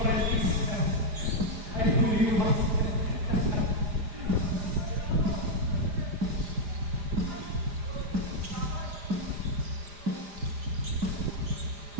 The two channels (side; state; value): left; late; 4.9 ms